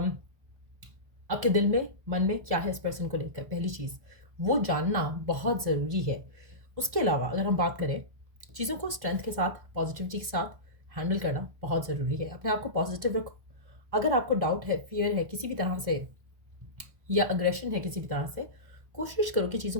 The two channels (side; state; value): left; late; 1.3 ms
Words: आपके दिल में मन में क्या है इस पर्सन को लेकर। पहली चीज़ वो जानना बहुत ज़रूरी है। उसके अलावा अगर हम बात करें, चीज़ों को स्ट्रेंथ के साथ, पॉजिटिविटी के साथ हैंडल करना बहुत ज़रूरी है। अपने आप को पॉजिटिव रखो। अगर आपको डाउट है, फियर है किसी भी तरह से, या अग्रेशन है किसी भी तरह से, कोशिश करो कि